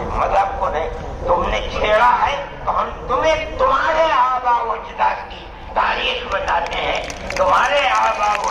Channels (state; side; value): identical; both; correlation 1.00